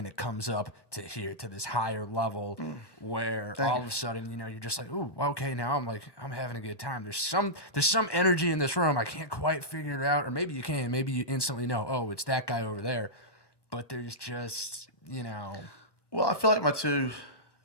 it comes up to this higher level where all of a sudden you're just like, ooh, okay, now I'm having a good time. There's some energy in this room. I can't quite figure it out, or maybe you can. Maybe you instantly know, oh, it's that guy over there. But there's just Well, I feel like my two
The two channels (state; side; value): late; right; 1.1 ms